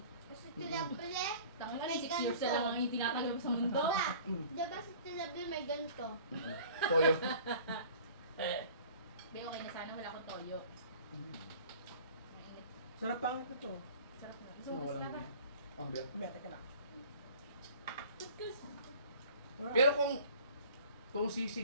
Kasi tilabli, Tanga ka, May 6 years na lang ang itinatagal mo sa mundo. ba? Diba si tilabli may ganito? Toyo. Be, okay na sana, wala akong toyo. Mainit. Sarap pangit na to. Sarap na. Ano, So, kasi walang na. ganyan. Ang biyak. Kumete ka na. Wala. Pero kung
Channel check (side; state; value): both; inverted; correlation -0.47